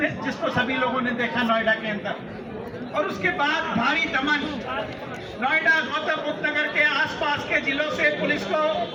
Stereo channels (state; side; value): identical; both; correlation 1.00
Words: सभी लोगों ने देखा नोएडा के अंदर। और उसके बाद भारी दमन, नोएडा, गौतम बुद्ध नगर के आसपास के जिलों से पुलिस को